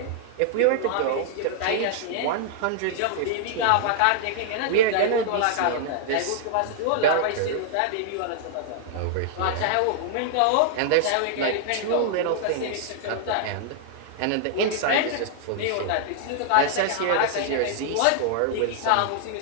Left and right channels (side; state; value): both; different; correlation -0.01